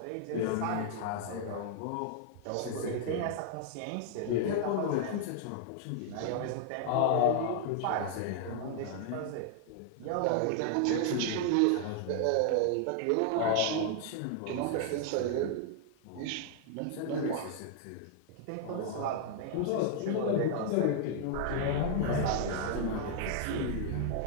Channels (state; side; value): different; both; correlation -0.01